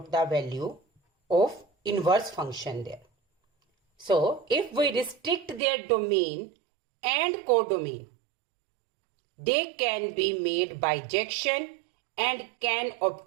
the value of inverse function there. So if we restrict their domain and codomain, they can be made bijection and can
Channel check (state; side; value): drops out; left; at 5.6 s